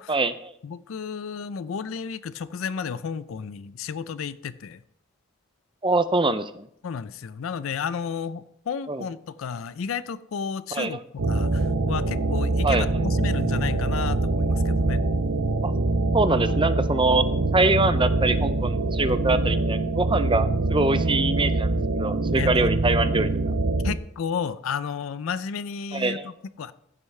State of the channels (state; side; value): normal; both; correlation 0.50